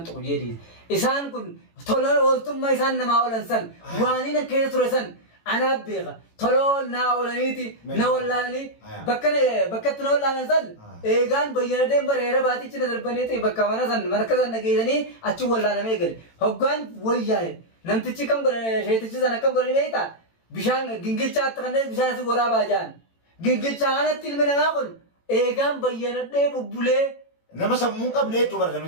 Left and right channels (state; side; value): late; right; 18 ms